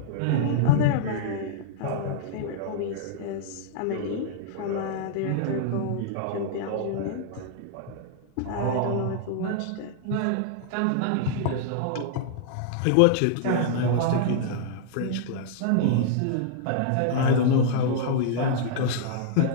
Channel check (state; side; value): different; both; correlation -0.01